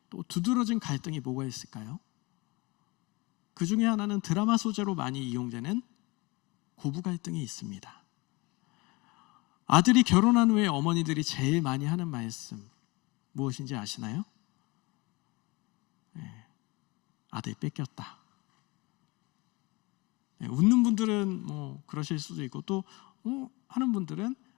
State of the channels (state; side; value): quieter; right; 25.0 dB